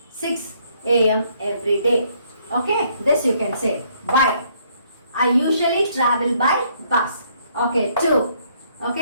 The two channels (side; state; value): both; inverted; correlation -0.67